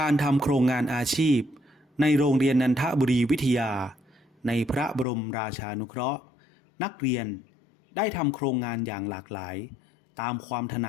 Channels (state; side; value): drops out; right; at 5.1 s